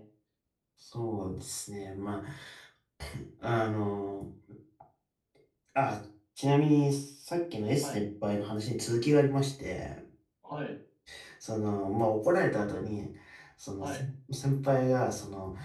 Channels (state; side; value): identical; both; correlation 1.00